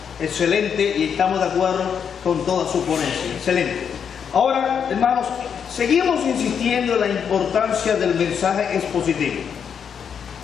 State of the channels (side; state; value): right; quieter; 7.4 dB